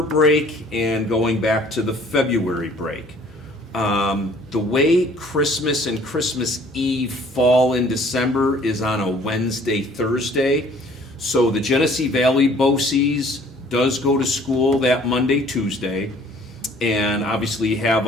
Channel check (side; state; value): both; normal; correlation 0.55